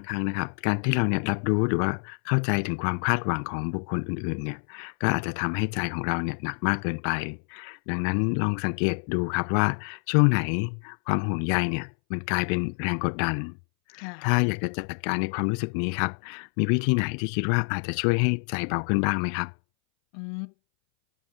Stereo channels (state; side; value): silent; right; 60 dB below the other